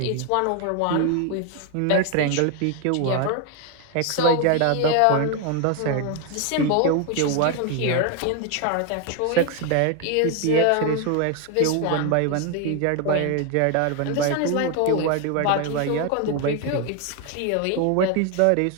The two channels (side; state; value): both; different; correlation 0.01